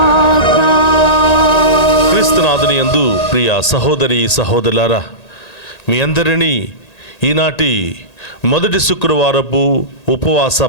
క్రీస్తునాథుని యందు ప్రియ సహోదరి సహోదరులారా, మీ అందరినీ ఈనాటి మొదటి శుక్రవారపు ఉపవాస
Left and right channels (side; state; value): right; late; 1.8 ms